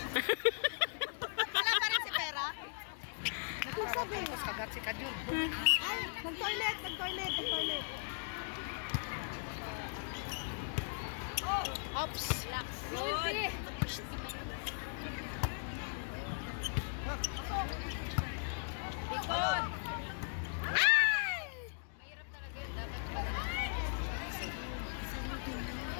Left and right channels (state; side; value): silent; right; digital silence